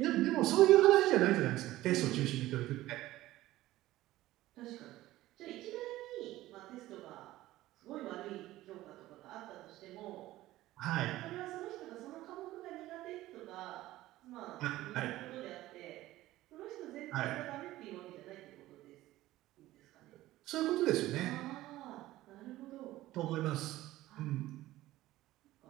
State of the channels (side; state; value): left; quieter; 16.2 dB